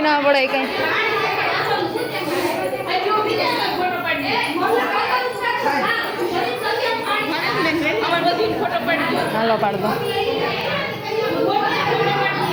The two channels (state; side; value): identical; both; correlation 1.00